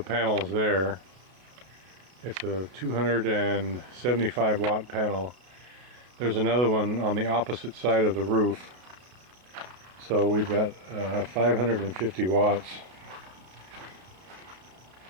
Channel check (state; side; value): late; left; 32 ms